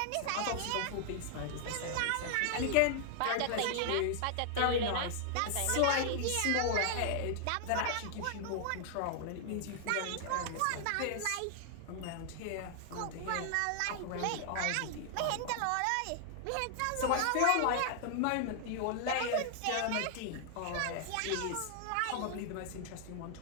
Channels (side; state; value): both; different; correlation -0.01